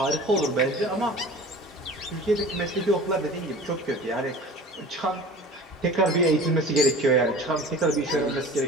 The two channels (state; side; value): normal; both; correlation 0.40